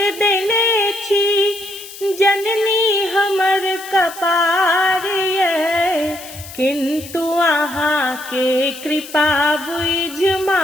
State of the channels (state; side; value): noise; left; hiss, 15 dB below the sound